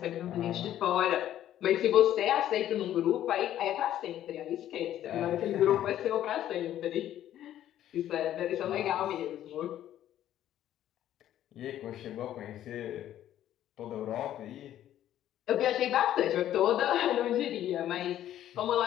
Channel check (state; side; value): quieter; right; 12.0 dB